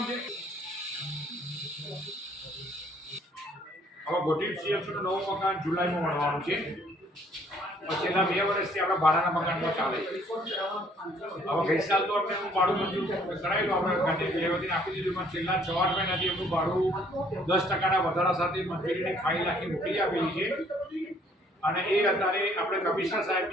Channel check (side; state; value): both; normal; correlation 0.61